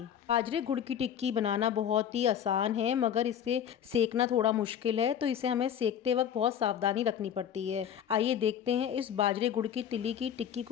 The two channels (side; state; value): right; quieter; 9.2 dB